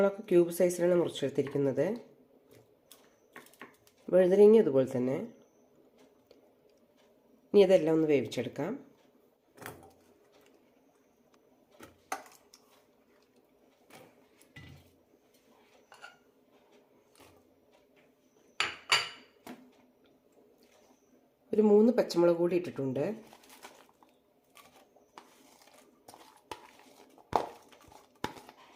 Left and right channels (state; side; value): identical; both; correlation 1.00